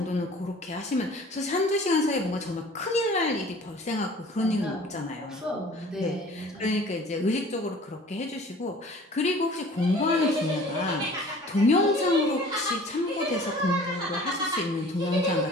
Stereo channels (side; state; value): both; normal; correlation 0.48